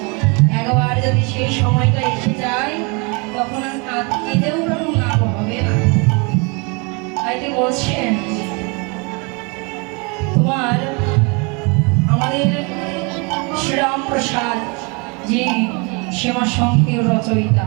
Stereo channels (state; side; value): quieter; left; 31.2 dB